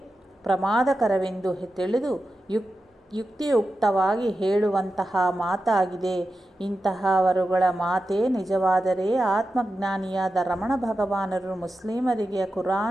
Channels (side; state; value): both; normal; correlation 0.91